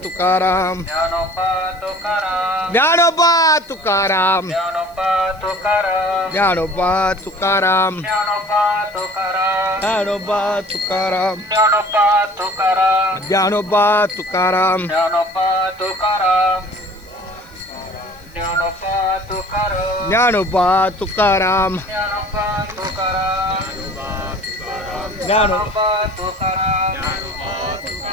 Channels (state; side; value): noise; right; hiss, 28 dB below the sound